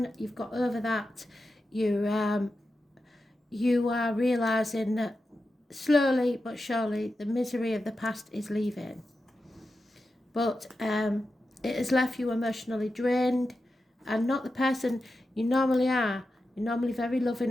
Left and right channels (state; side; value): normal; both; correlation 0.91